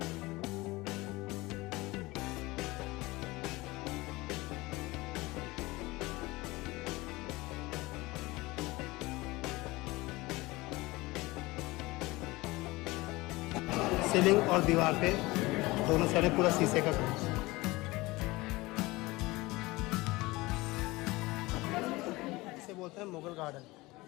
सीलिंग और दीवार पे दोनों साइड पूरा शीशे का काम। इसे बोलते हैं मुगल गार्डन।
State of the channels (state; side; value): quieter; right; 21.3 dB